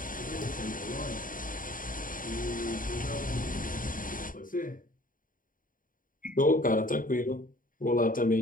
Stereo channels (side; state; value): right; late; 0.40 ms